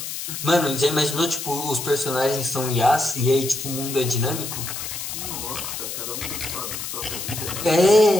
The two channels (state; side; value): noise; left; hiss, 6 dB below the sound